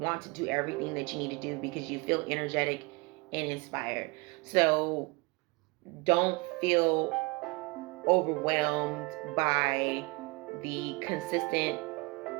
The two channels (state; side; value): quieter; left; 27.1 dB